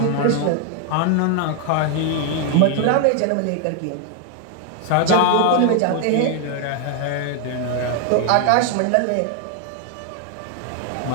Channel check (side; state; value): both; different; correlation 0.00